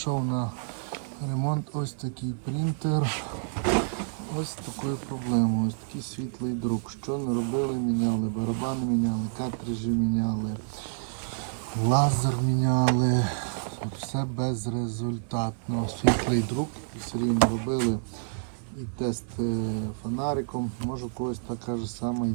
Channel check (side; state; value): left; silent; digital silence